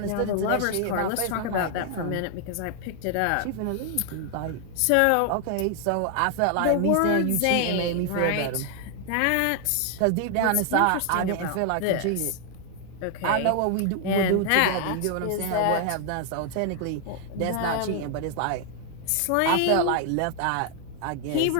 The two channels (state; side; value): different; both; correlation 0.00